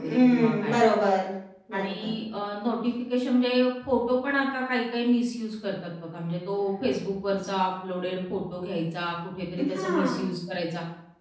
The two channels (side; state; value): both; identical; correlation 1.00